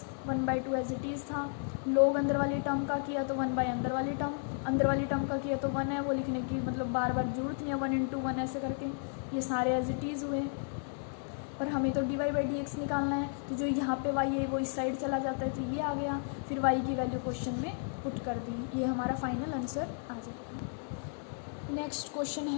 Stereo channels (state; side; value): silent; right; 56 dB below the other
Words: 1/2 एज इट इज़ था, log अंदर वाली टर्म का किया तो 1/, अंदर वाली टर्म का किया तो 1 है, वो लिखने की मतलब बार बार जरूरत नहीं है, 1 × 1 ऐसे करके ये सारे एज इट इज़ हुए। पर हमें तो dy/dx निकालना है, तो जो यहाँ पे y है वो इस साइड चला जाता है, तो ये आ गया, फिर y की वैल्यू क्वेश्चन में पुट कर दी, ये हमारा फाइनल आंसर आ जाएगा। नेक्स्ट क्वेश्चन